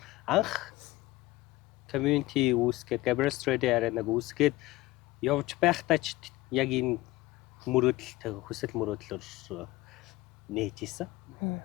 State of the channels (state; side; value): quieter; right; 18.2 dB